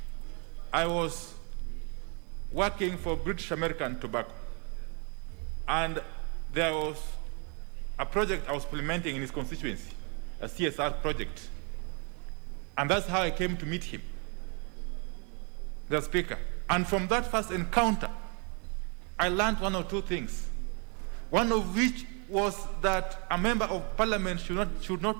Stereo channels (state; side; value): quieter; left; 35.8 dB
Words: I was working for British American Tobacco. And there was a project I was implementing in his constituency, a CSR project. And that's how I came to meet him, the Speaker. And from that first encounter, I learned one or two things. One of which was that a member of parliament should